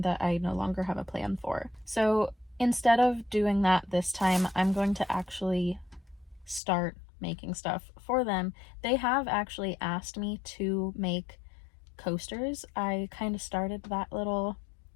that I no longer have a plan for. So instead of doing that this time, I'm going to actually start making stuff for them. They have actually asked me to make coasters. I kind of started that little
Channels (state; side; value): drops out; right; at 6.6 s